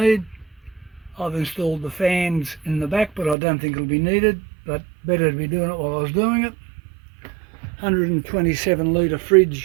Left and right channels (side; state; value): left; drops out; at 3.4 s